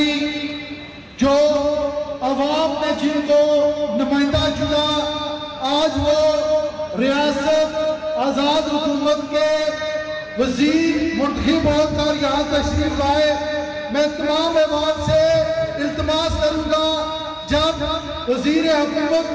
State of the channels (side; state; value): both; identical; correlation 1.00